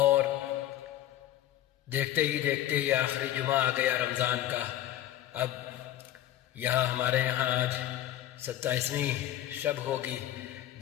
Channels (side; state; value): right; quieter; 12.9 dB